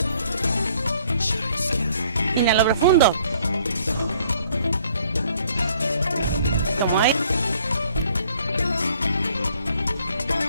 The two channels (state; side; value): inverted; both; correlation -0.62